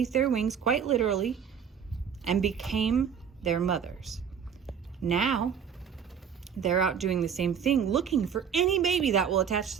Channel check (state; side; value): quieter; left; 7.5 dB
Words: their wings, quite literally, and became their mothers. Now, they're out doing the same thing, looking for any baby that will attach